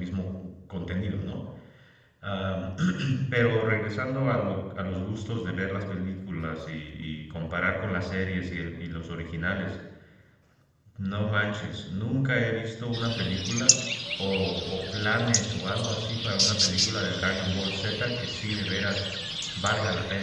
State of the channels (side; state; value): both; identical; correlation 1.00